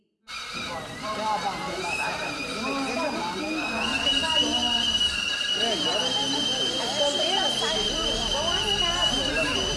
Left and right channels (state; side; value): identical; both; correlation 1.00